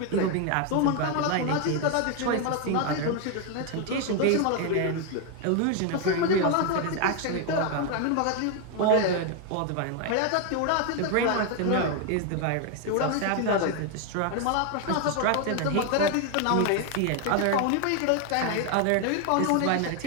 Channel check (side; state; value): both; different; correlation 0.01